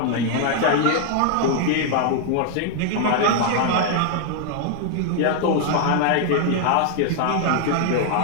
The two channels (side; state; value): both; different; correlation 0.00